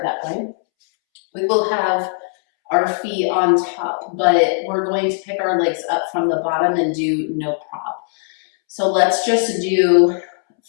that way. We will have our feet on top, but we're going to pick our legs up from the bottom and do no prop. So let's just do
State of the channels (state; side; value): silent; right; 67 dB below the other